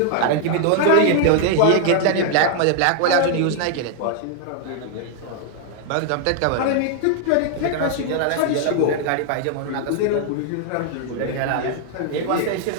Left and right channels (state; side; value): different; both; correlation 0.00